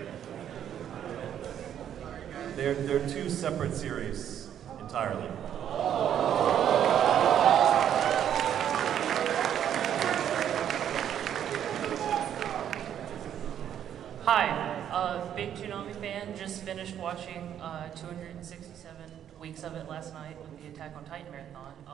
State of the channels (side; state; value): left; quieter; 9.9 dB